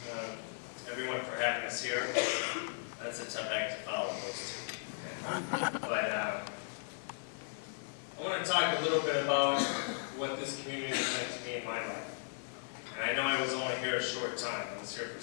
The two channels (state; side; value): silent; right; digital silence